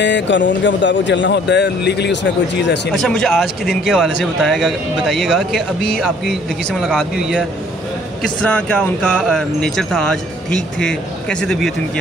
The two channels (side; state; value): both; normal; correlation 0.58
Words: कानून के मुताबिक चलना होता है, लीगली उसमें कोई चीज़ ऐसी नहीं। अच्छा, मुझे आज के दिन के हवाले से बताइएगा कि अभी आपकी लड़की से मुलाकात भी हुई है, किस तरह क्या उनका नेचर था आज? ठीक थे? कैसी तबीयत उनकी